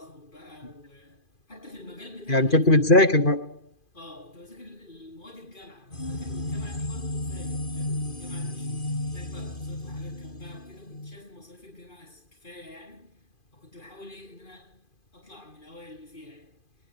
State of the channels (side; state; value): right; late; 2.5 ms